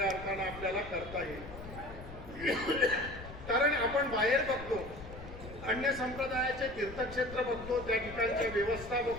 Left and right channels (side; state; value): left; noise; rumble, 13 dB below the sound